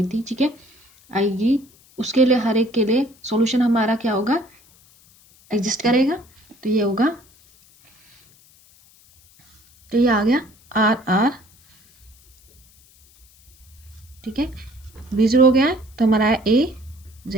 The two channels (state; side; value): noise; left; hiss, 29 dB below the sound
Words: थी, ठीक है, आएगी, उसके लिए हर एक के लिए सॉल्यूशन हमारा क्या होगा, एग्जिस्ट करेगा। तो ये होगा, तो ये आ गया आर आर ठीक है, बी जीरो हो गया है तो हमारा है ए